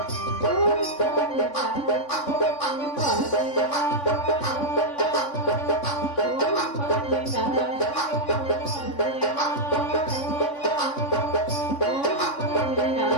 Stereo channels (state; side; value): late; right; 3.5 ms